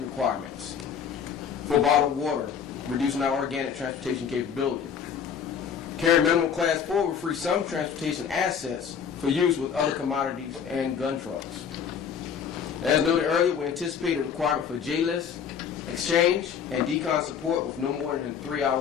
requirements for bottled water, reducing our organic transportation capability. Carrying minimum Class 4 will free some transportation assets for use with other commodities and gun trucks. As noted earlier, we anticipate a requirement for J-list, exchange, and decon support with no more than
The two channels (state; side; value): quieter; right; 7.4 dB